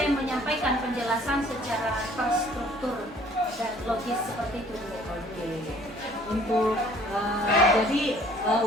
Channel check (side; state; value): both; normal; correlation 0.56